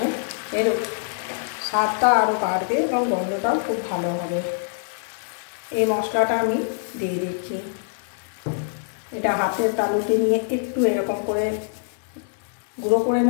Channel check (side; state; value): right; silent; digital silence